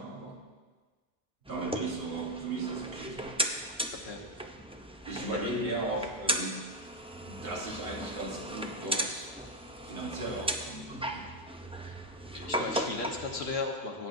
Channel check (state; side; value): normal; both; correlation 0.05